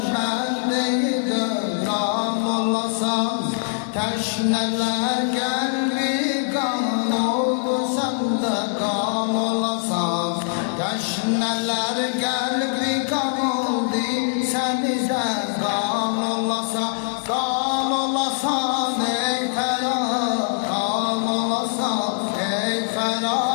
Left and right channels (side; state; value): right; silent; 61 dB below the other